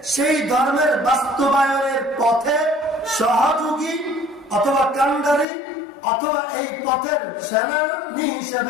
সেই ধর্মের বাস্তবায়নের পথে সহযোগী অথবা কান্ডারি অথবা এই পথের সেনানী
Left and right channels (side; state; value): right; drops out; at 5.5 s